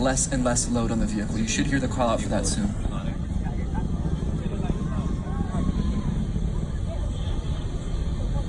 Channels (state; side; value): identical; both; correlation 1.00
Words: and less load on the vehicle. You should hear the call out for that soon.